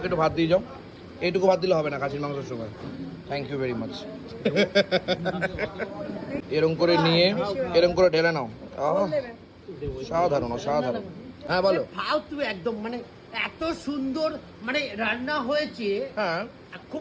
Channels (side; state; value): both; identical; correlation 1.00